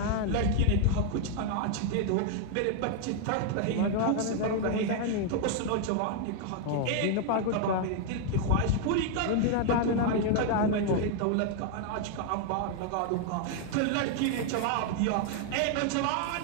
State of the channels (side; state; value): both; different; correlation 0.00